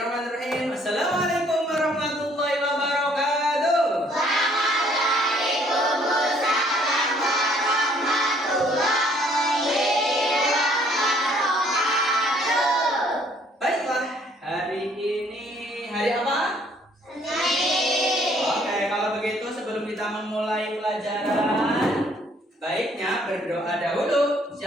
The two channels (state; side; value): normal; both; correlation 0.62